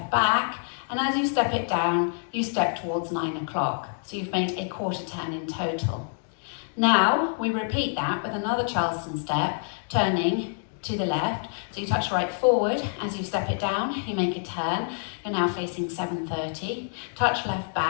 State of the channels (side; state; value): right; silent; digital silence